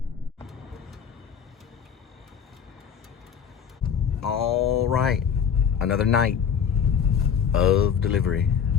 All right, another night of delivery.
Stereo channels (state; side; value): quieter; right; 7.6 dB